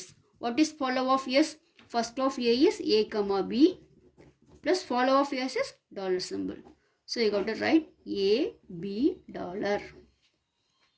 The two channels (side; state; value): both; identical; correlation 1.00